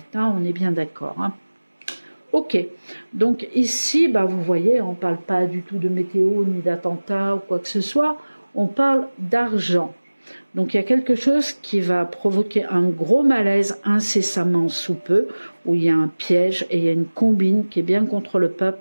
Hein, on est bien d'accord. Hein. Ok, donc ici, bah, vous voyez, on ne parle pas du tout de météo, ni d'attentat ou quoi que ce soit, on parle d'argent. Donc il y a quelque chose qui va provoquer un gros malaise incessamment sous peu, où il y a un piège et il y a une combine qui est bien contre le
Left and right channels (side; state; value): both; inverted; correlation -1.00